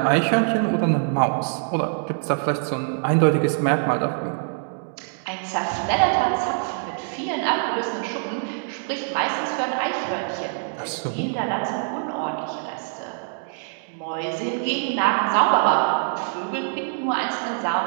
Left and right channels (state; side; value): silent; left; digital silence